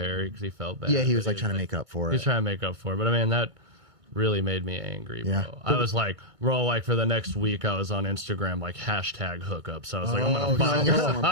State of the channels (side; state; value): left; late; 2.2 ms